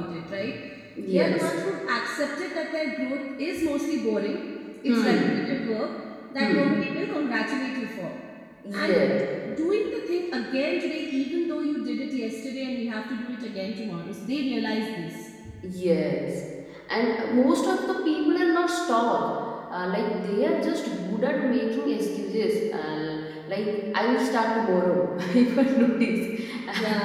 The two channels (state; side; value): identical; both; correlation 1.00